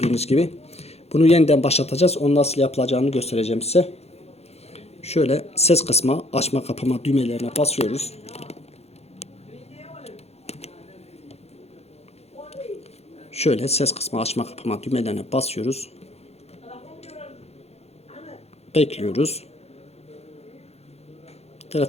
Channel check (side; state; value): right; late; 0.30 ms